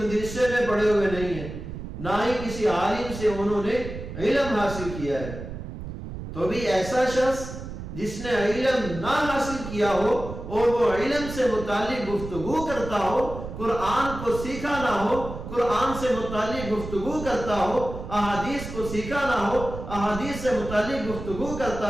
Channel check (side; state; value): right; noise; rumble, 9 dB below the sound